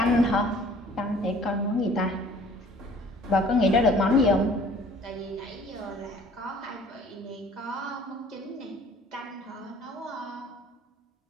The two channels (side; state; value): both; normal; correlation 0.52